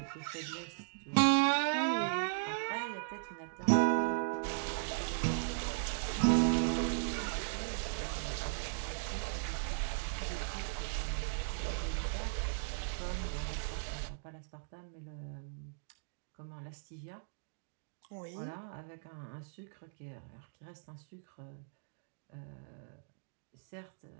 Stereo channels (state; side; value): silent; left; digital silence